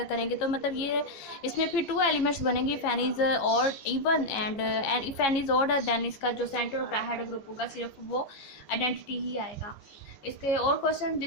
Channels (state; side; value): late; right; 15 ms